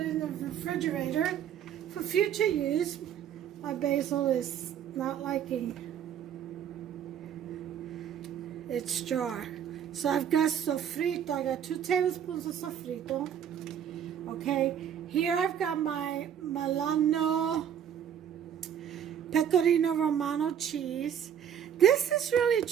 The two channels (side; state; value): left; quieter; 9.1 dB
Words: in the refrigerator for future use. My basil is not liking its jar. So I've got sofrito. I got 2 tablespoons of sofrito. Okay, here I've got my Milano Pecorino Romano cheese. This is really